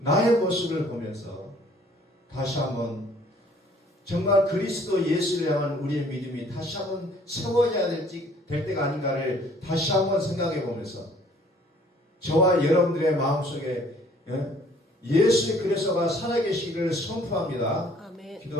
모습을 보면서 다시 한번 정말 그리스도 예수를 향한 우리의 믿음이 다시 한번 세워져야 될 때가 아닌가를 다시 한번 생각해 보면서 저와 여러분들의 마음속에 예수의 그리스도가 살아계시기를 선포합니다. 아멘.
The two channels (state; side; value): normal; both; correlation 0.57